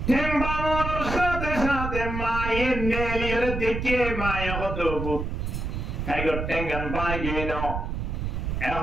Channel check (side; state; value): right; noise; rumble, 3 dB below the sound